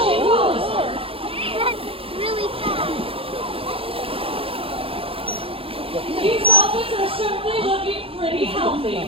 she follows her. That's really fast. These dolphins are certainly looking pretty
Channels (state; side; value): late; left; 0.27 ms